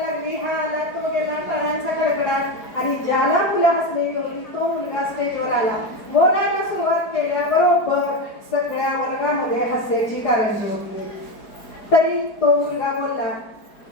लागली. हा आला, तो गेला, टाळ्यांचा कडकडाट. आणि ज्याला मुलं हसलेली होती तो मुलगा स्टेजवर आला. बोलायला सुरुवात केल्याबरोबर सगळ्या वर्गामध्ये हास्याची कारंजी होती. तरी तो मुलगा बोलला.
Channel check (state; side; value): late; right; 4.6 ms